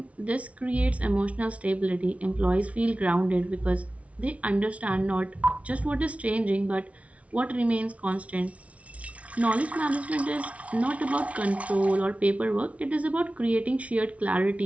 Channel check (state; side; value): late; left; 0.065 ms